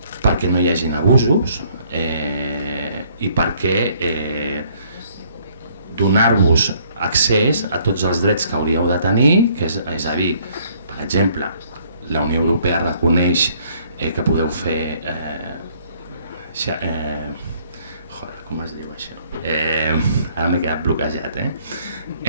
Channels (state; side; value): inverted; both; correlation -0.62